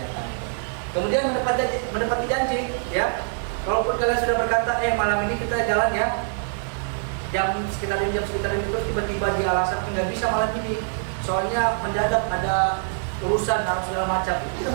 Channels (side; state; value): left; silent; 60 dB below the other